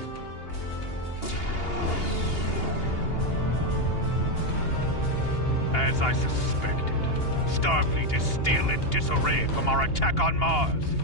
As I suspected, Starfleet is still in disarray from our attack on Mars.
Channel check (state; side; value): late; right; 2.8 ms